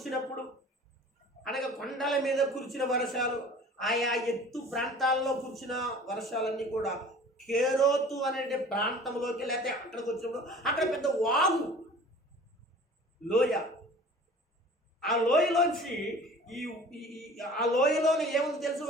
అనగా కొండల మీద కురిసిన వర్షాలు, ఆయా ఎత్తు ప్రాంతాల్లో కురిసిన వర్షాలన్నీ కూడా కేరోతు అనే ప్రాంతంలోకి లేకపోతే అక్కడికి వచ్చినప్పుడు అక్కడ పెద్ద వాగు లోయ. ఆ లోయలోంచి ఆ లోయలోని ఏముంది తెలుసు,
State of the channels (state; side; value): normal; both; correlation 0.45